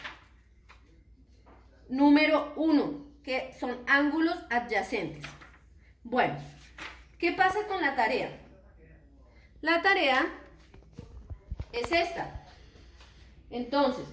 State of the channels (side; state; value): both; identical; correlation 1.00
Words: número 1, que son ángulos adyacentes. Bueno, ¿qué pasa con la tarea? La tarea es esta. Entonces,